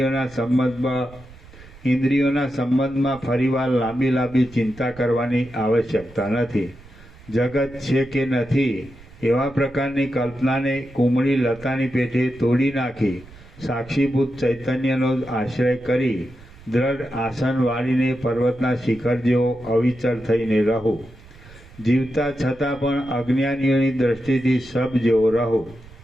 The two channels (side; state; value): right; noise; rumble, 21 dB below the sound